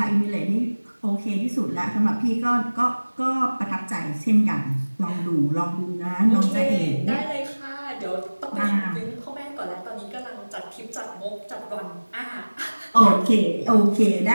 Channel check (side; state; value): both; inverted; correlation -1.00